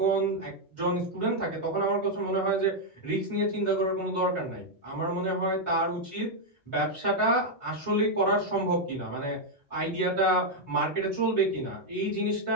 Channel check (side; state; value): both; normal; correlation 0.00